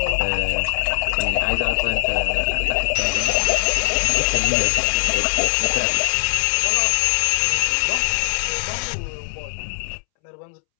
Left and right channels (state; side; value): silent; right; 65 dB below the other